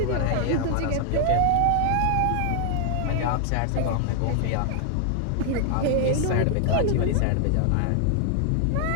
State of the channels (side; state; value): both; different; correlation 0.00